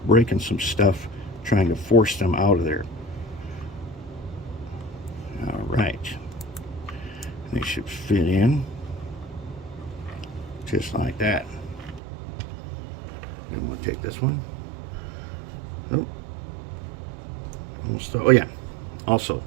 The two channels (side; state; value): left; drops out; at 12.0 s